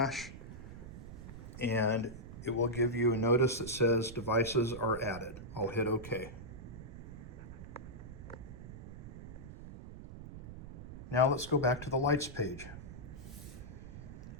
and it will give you a notice that says devices are added. I'll hit OK. Now let's go back to the lights page.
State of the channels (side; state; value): right; noise; rumble, 12 dB below the sound